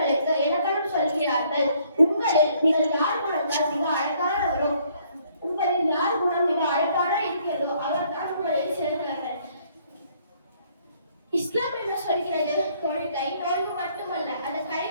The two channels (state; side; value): inverted; both; correlation -0.65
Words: இலக்கணம் சொல்கிறார்கள். நீங்கள் யார் குணத்தால் மிக அழகானவரோ, உங்களில் யார் குணம் மிக அழகான இருக்கிறதோ அவர்தான் உங்களில் சிறந்தவர்கள். இஸ்லாம் என்ன சொல்கிறது? தொழுகை நோன்பு மட்டுமல்ல, அதை